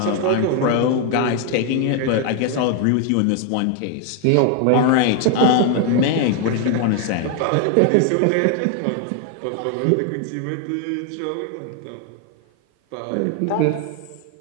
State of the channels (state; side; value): different; both; correlation 0.00